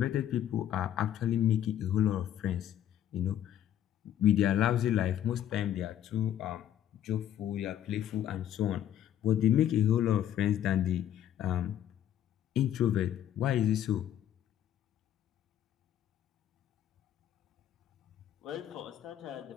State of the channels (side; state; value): right; quieter; 10.9 dB